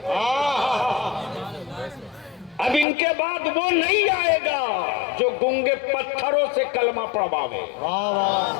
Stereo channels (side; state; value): right; drops out; at 2.9 s